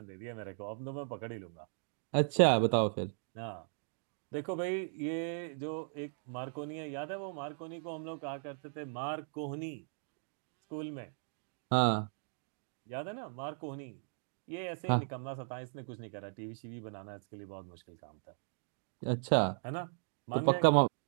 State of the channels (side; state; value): left; silent; digital silence